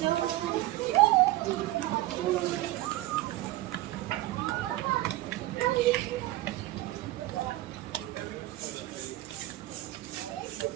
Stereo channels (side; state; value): left; quieter; 16.6 dB